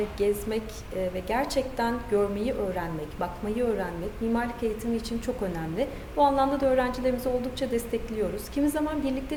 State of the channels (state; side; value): identical; both; correlation 1.00